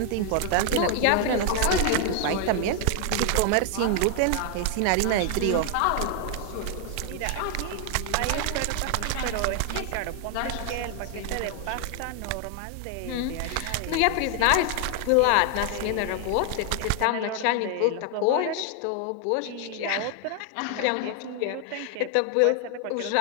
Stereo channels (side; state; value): both; different; correlation 0.00